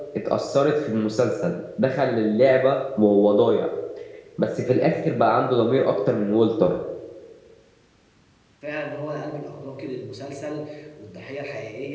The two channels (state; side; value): identical; both; correlation 1.00